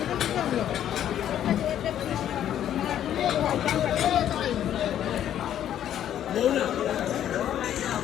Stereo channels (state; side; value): quieter; right; 10.8 dB